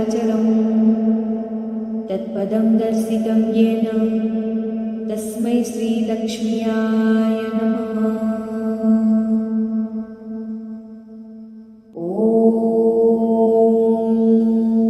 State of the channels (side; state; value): both; identical; correlation 1.00